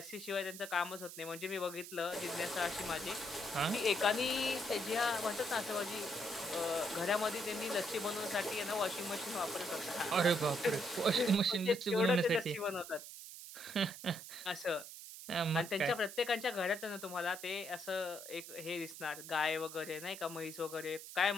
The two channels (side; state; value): right; noise; hiss, 12 dB below the sound